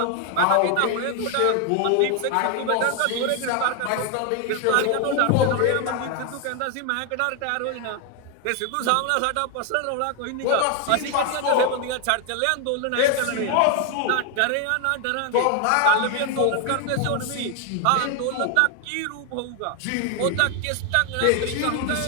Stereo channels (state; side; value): different; both; correlation 0.01